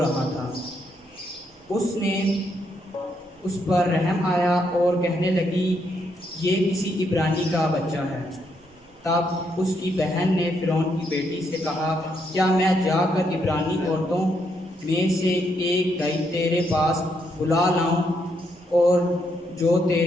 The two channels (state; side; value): normal; both; correlation 0.77